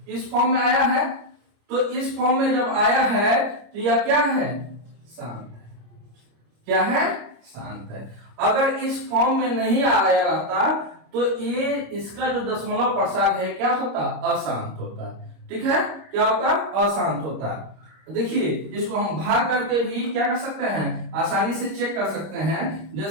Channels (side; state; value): left; late; 26 ms